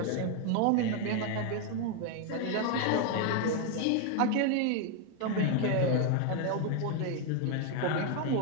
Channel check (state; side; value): different; both; correlation 0.01